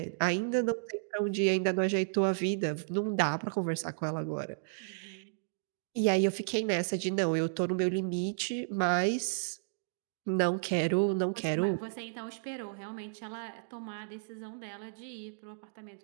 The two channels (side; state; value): left; silent; digital silence